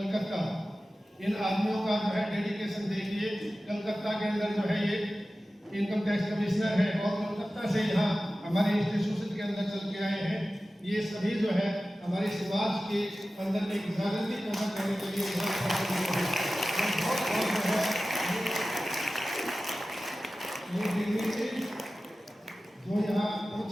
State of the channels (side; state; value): both; normal; correlation 0.95